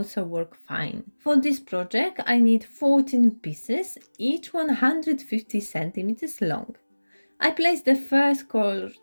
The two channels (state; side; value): inverted; both; correlation -1.00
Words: work fine. For this project I need 14 pieces, each 150 centimeters long. I place the first cord